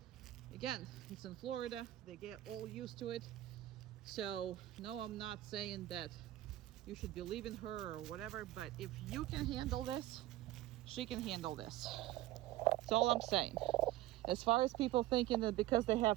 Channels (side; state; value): left; quieter; 15.5 dB